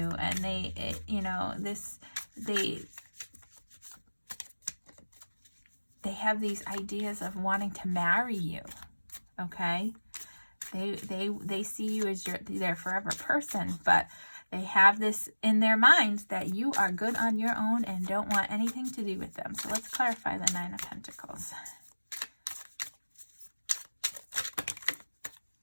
and they have these ideas of wanting to marry you. Okay, they see you as their forever person, but they have this in their minds that you are good on your own and don't want anything to do with them. So let's clarify the Nine of Pentacles. Okay,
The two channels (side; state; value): both; inverted; correlation -1.00